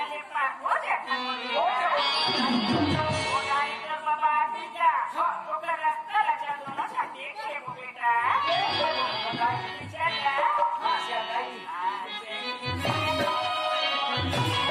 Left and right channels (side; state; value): both; identical; correlation 1.00